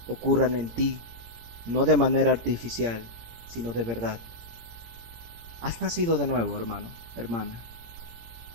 ocurran en ti, no de manera artificial, sino de verdad. Has nacido de nuevo, hermano, hermana.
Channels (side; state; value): left; late; 17 ms